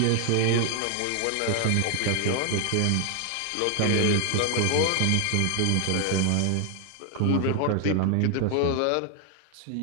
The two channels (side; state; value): both; different; correlation 0.00